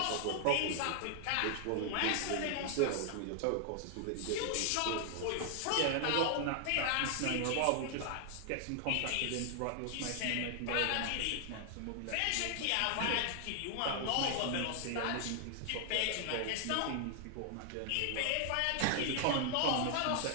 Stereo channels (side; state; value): both; different; correlation 0.00